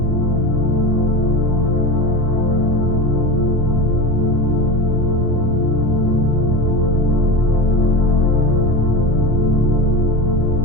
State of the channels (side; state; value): both; normal; correlation 0.26